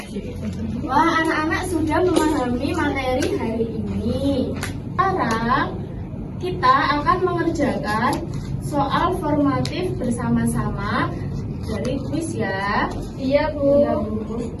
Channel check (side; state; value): both; identical; correlation 1.00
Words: 2. Wah, anak-anak sudah memahami materi hari ini. Sekarang kita akan mengerjakan soal formatif bersama-sama dari kuis ya. Iya, Bu.